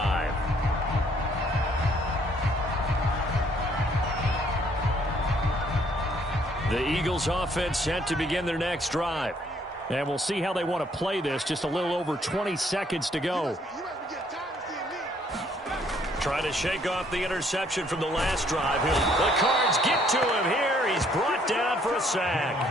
The Eagles offense set to begin their next drive. And we'll see how they want to play this. Just a little over 20 seconds to go. Trying to shake off the interception from the last drive. The Cards get to him here. He's brought down for a sack.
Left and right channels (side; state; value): both; normal; correlation 0.65